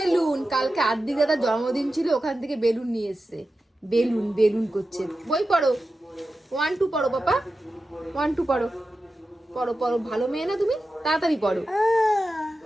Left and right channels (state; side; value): normal; both; correlation 0.92